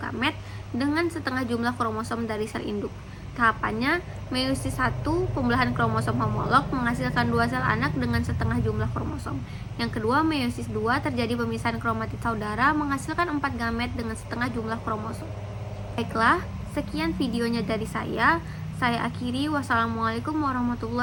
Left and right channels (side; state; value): both; identical; correlation 1.00